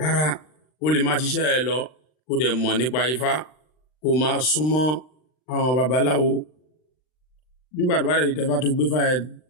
ó lè máa ṣiṣẹ́ ẹ lọ kó dẹ̀ mọ̀ nípa Ifá kó máa súnmọ́ àwọn babaláwo nígbà tó bá dẹ̀ tẹ́fá tó gbé fá ẹ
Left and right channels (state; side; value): late; right; 39 ms